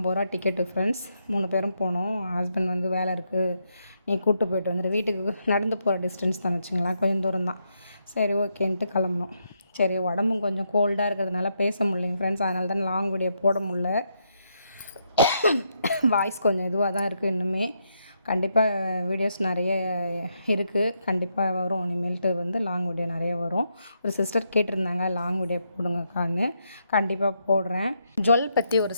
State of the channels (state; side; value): inverted; both; correlation -0.80